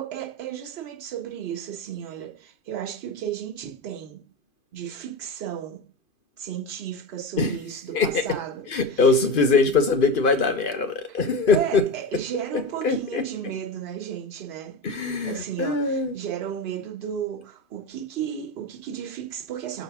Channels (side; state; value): right; late; 2.5 ms